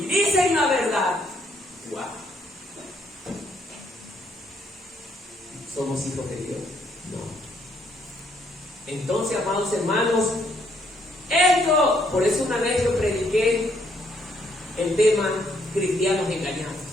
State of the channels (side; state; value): both; normal; correlation 0.71